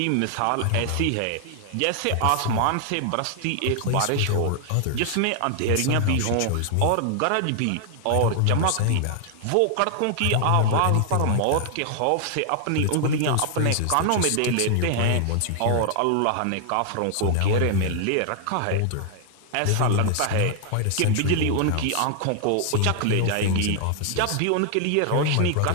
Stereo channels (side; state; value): both; different; correlation 0.00